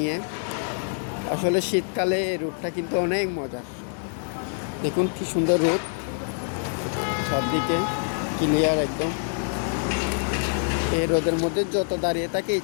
আসলে শীতকালে এই রুটটা কিন্তু অনেক মজার। দেখুন কি সুন্দর রুট, সবদিকে ক্লিয়ার একদম। এই রোদের মধ্যে যত দাঁড়িয়ে থাকে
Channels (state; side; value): silent; right; digital silence